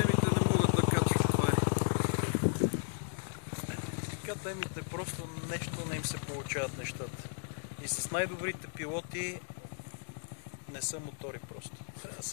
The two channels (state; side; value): silent; right; digital silence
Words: Темите просто нещо не им се получават нещата. И с най-добрите пилоти не са мотори просто. Трябва да